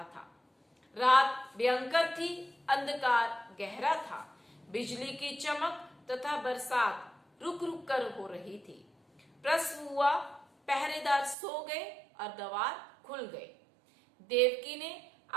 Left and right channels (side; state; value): left; drops out; at 11.4 s